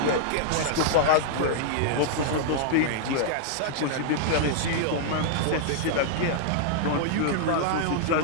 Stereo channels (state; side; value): different; both; correlation -0.01